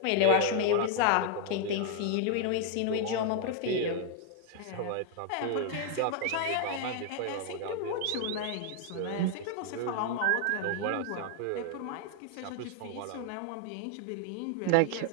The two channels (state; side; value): different; both; correlation 0.00